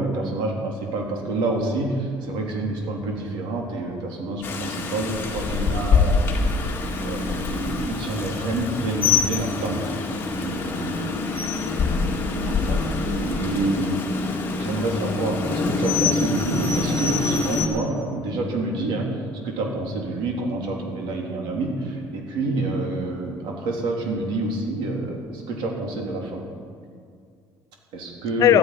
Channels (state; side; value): normal; both; correlation 0.48